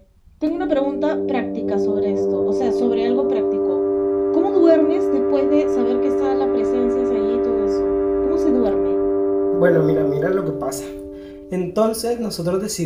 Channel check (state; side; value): identical; both; correlation 1.00